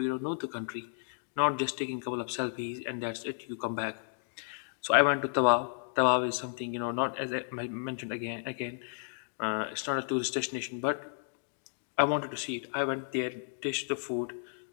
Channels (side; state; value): right; silent; digital silence